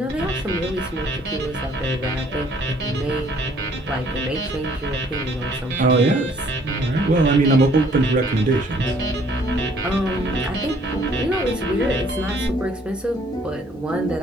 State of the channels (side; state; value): both; normal; correlation 0.61